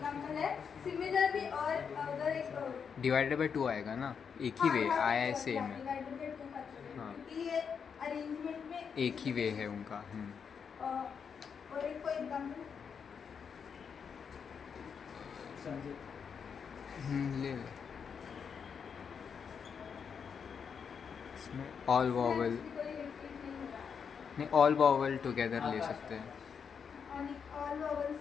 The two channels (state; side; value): quieter; right; 6.6 dB